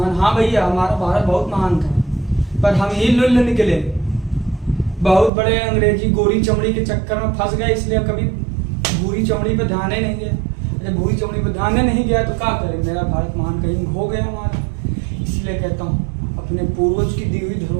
हाँ भैया, हमारा भारत बहुत महान था, पर हम ही लुल्ल निकले, बहुत बड़े अंग्रेजी गोरी चमड़ी के चक्कर में फंस गए, इसलिए कभी भूरी चमड़ी पे ध्यान ही नहीं गया। जब भूरी चमड़ी पे ध्यान ही नहीं गया तो क्या करें, मेरा भारत महान कहीं हो गया हमारा। इसलिए कहता हूँ अपने पूर्वज की दी हुई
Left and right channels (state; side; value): drops out; left; at 5.3 s